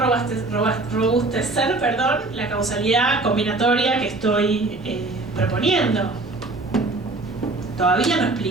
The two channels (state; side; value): quieter; left; 3.2 dB